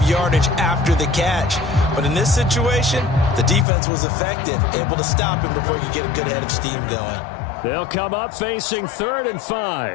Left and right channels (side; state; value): right; drops out; at 3.7 s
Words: yardage after the catch. But in this situation, the defense was effective, able to stop him before he could get a good head of steam going. They'll come up facing 3rd and